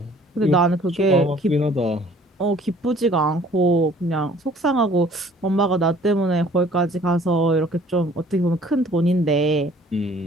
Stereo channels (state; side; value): normal; both; correlation 0.55